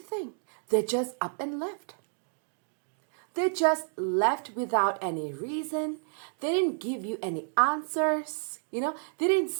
They just up and left. They just left without any reason. They didn't give you any answers. You know, they didn't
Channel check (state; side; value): silent; left; digital silence